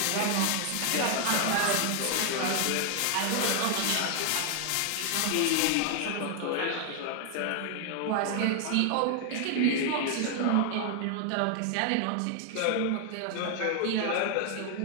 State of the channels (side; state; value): both; different; correlation 0.00